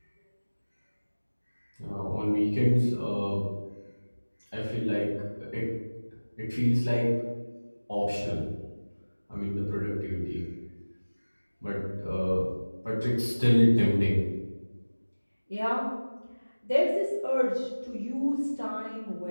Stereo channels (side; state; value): both; inverted; correlation -1.00